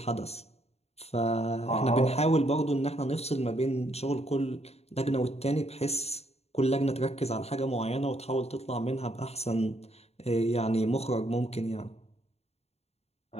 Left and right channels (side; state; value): right; late; 0.30 ms